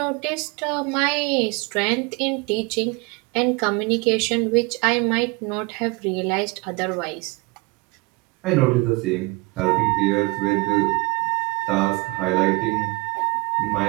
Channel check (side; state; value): left; quieter; 25.4 dB